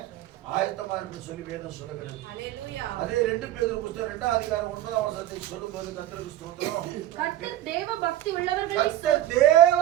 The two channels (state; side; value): quieter; left; 13.2 dB